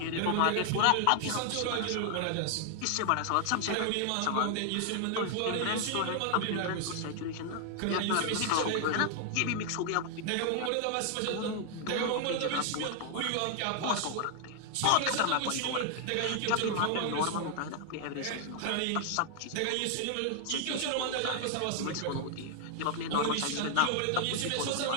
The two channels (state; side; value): different; both; correlation 0.00